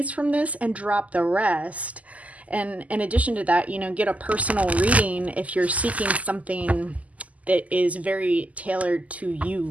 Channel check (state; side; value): late; left; 0.073 ms